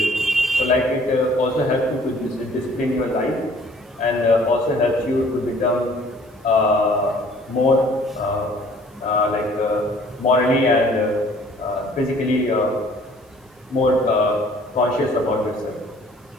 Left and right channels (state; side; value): normal; both; correlation 0.55